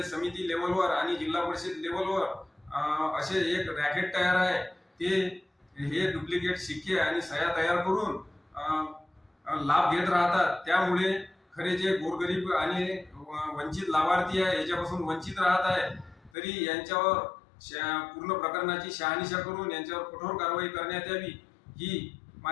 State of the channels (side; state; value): right; drops out; at 16.3 s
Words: समिती लेवलवर आणि जिल्हा परिषद लेवलवर असे एक रॅकेट तयार आहे. ते हे डुप्लिकेट शिक्के आणि सह्या तयार करून लाभ घेत राहतात. त्यामुळे खरे जे गोरगरीब आणि वंचित लाभार्थी आहे याच्यापासून वंचित राहत आहे. तरी यांच्यावर पूर्ण प्रकरणाची शहानिशा करून यांच्यावर कठोर कारवाई करण्यात यावी ही